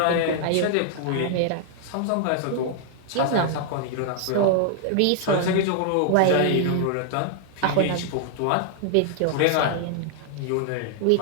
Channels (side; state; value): both; different; correlation 0.00